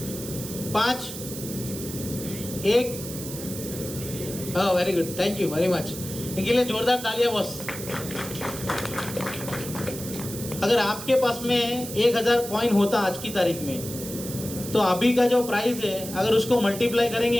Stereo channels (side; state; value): right; noise; hiss, 10 dB below the sound